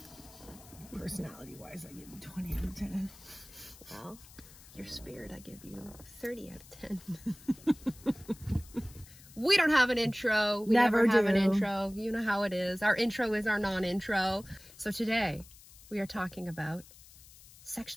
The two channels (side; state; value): left; noise; hiss, 21 dB below the sound